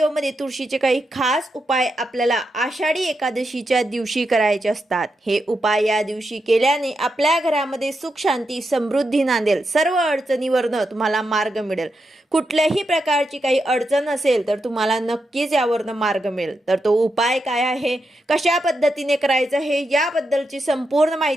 तुळशीचे काही खास उपाय आपल्याला आषाढी एकादशीच्या दिवशी करायचे असतात. हे उपाय या दिवशी केल्याने आपल्या घरामध्ये सुख शांती समृद्धी नांदेल. सर्व अडचणीवरनं तुम्हाला मार्ग मिळेल. कुठल्याही प्रकारची काही अडचण असेल तर तुम्हाला नक्कीच यावरनं मार्ग मिळेल. तर तो उपाय काय आहे, कशा पद्धतीने करायचं आहे, याबद्दलची संपूर्ण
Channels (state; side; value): normal; both; correlation 0.85